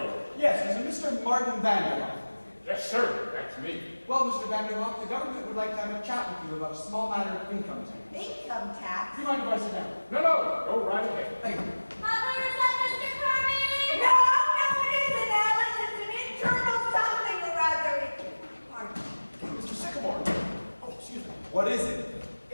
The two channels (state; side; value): inverted; both; correlation -1.00